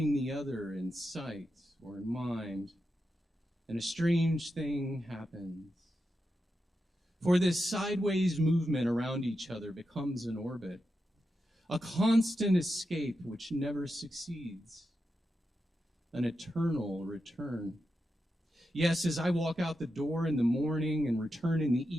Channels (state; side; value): normal; both; correlation 0.88